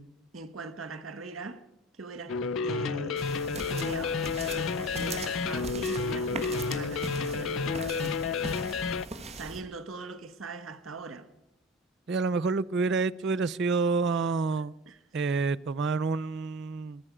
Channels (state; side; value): normal; both; correlation 0.31